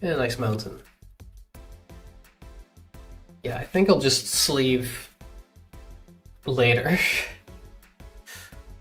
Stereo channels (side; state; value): both; identical; correlation 1.00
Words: And a nice mountain. Yeah, I think I'll just sleeve later.